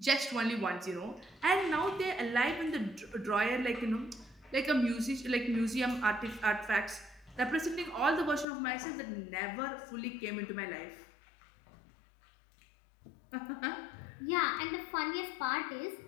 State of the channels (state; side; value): drops out; right; at 8.5 s